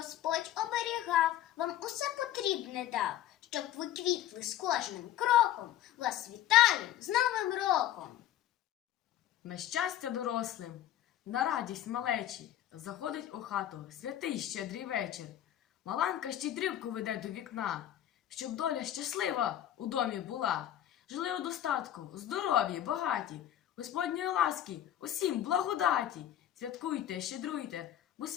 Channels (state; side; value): quieter; right; 11.9 dB